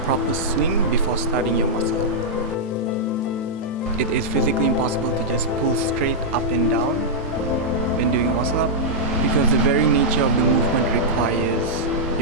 proper swing before starting your muscle up. It is physically impossible to just pull straight up and down when doing a muscle up, because the very nature of the movement requires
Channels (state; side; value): normal; both; correlation -0.08